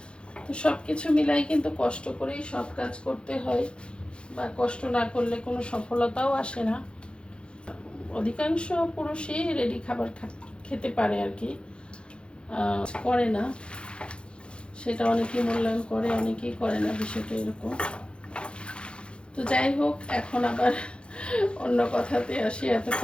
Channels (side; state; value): right; late; 0.056 ms